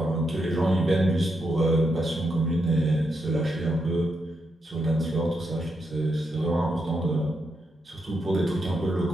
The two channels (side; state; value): both; normal; correlation 0.83